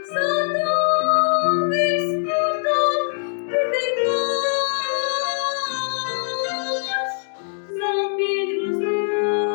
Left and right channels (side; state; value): right; silent; 64 dB below the other